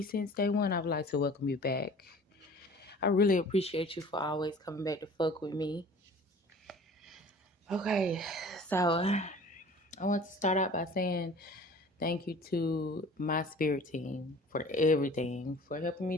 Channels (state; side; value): normal; both; correlation 0.45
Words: since day one, I would like to welcome you back. I really appreciate you for always coming back to fuck with me. Okay, so I want to start out by saying thank you to my spirit team for everything, for helping me